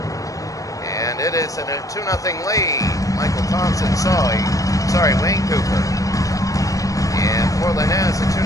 And it is a 2-0 lead. Michael Thompson Wayne Cooper. And Portland has a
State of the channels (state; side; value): late; right; 0.16 ms